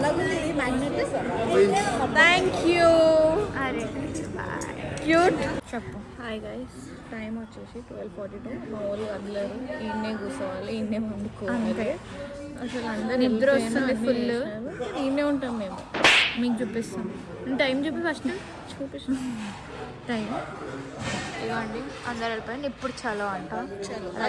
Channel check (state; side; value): identical; both; correlation 1.00